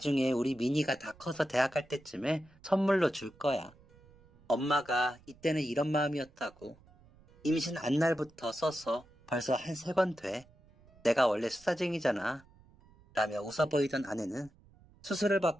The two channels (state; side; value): noise; right; rumble, 27 dB below the sound